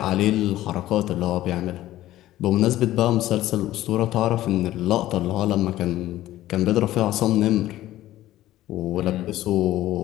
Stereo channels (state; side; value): quieter; right; 14.7 dB